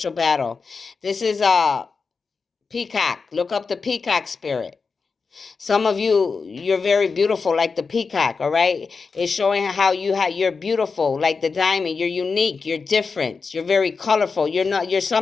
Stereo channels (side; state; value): right; quieter; 4.8 dB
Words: battle. This is peacock. Look up the peacock spirit. Some of you, you're very beautiful like the peacock, all right? It's showing how you're beautiful like the diamond. You're unique, you're different, you're very colorful. You're